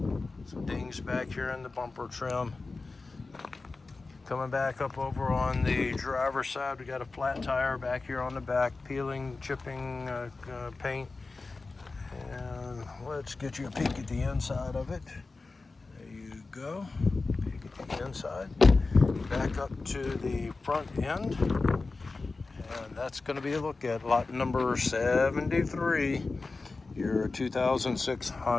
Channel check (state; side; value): quieter; right; 3.8 dB